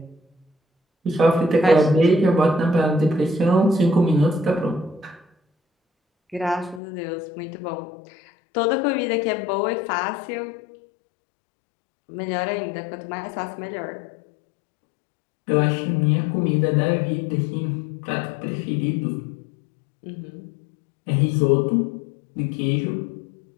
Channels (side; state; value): right; drops out; at 6.8 s